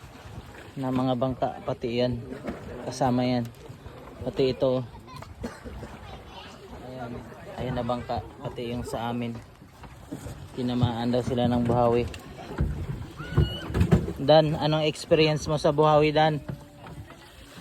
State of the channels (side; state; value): both; identical; correlation 1.00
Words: na mga bangka, pati yan kasama yan, pati ito ayan na bangka, pati yung sa amin tinamaan daw sila ng buhawi. Dan, anong experience mo sa buhawi, Dan?